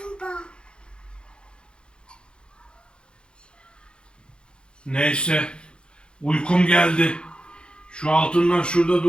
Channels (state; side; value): late; right; 0.053 ms